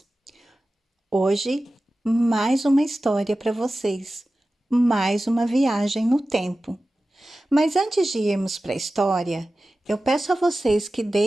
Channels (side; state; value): both; normal; correlation 0.95